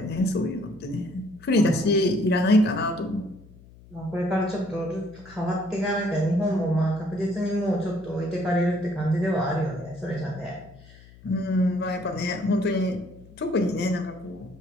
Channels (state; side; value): noise; left; hum, 22 dB below the sound